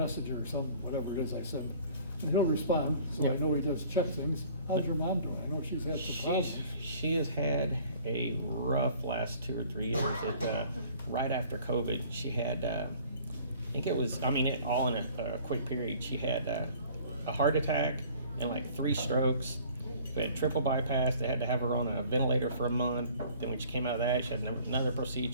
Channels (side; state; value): both; inverted; correlation -0.52